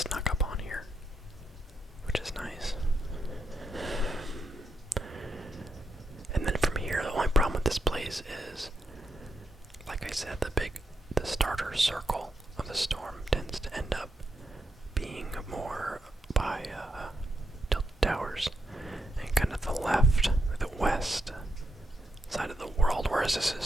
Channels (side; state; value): both; normal; correlation 0.83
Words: up on here, which is nice. And then from here, the only problem with this place is, like I said, the starter circle of the storm tends to end up being more by tilted towers and kind of the left, the west side of the world, whereas this